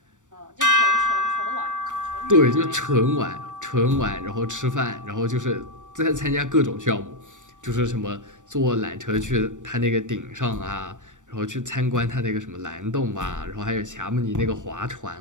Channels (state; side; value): late; left; 0.86 ms